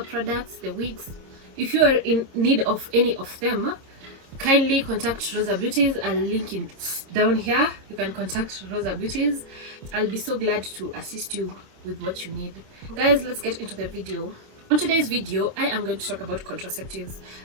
products, the wigs, if you are in need of any of them, kindly contact Rosa Beauties. I'll link it down here. You can contact Rosa Beauties. I'll be so glad to assist you with what you need. Guys, let's get into the video. On today's video, I am going to talk about contraceptives,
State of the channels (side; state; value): left; late; 26 ms